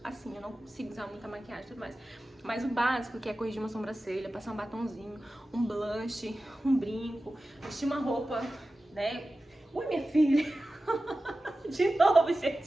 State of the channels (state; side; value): normal; both; correlation 0.95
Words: assim, eu não consigo usar muita maquiagem e tudo mais. Mas o básico, que é corrigir uma sobrancelha, passar um batonzinho, um blush, um brinco, vestir uma roupa, né? Ui, minha filha! De novo,